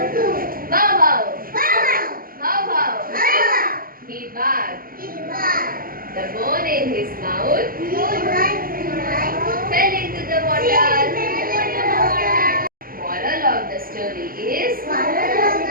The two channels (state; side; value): late; left; 0.42 ms